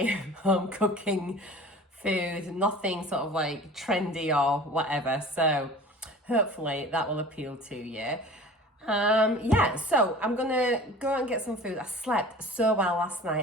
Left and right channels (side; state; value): both; normal; correlation 0.41